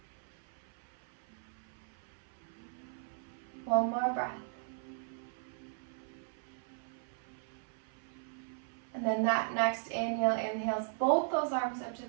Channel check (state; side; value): silent; left; 53 dB below the other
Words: One more breath. And then that next inhale inhales both those arms up to